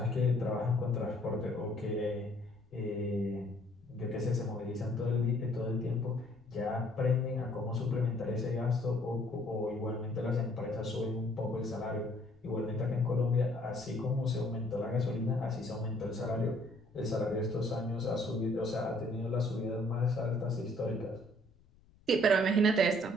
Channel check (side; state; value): left; noise; rumble, 29 dB below the sound